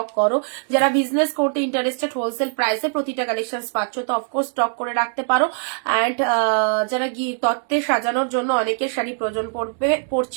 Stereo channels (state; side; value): silent; left; 64 dB below the other